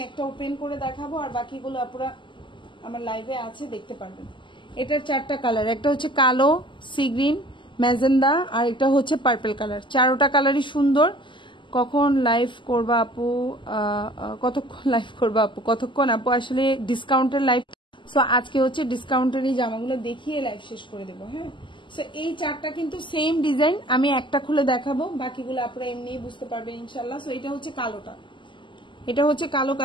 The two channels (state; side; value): late; right; 0.24 ms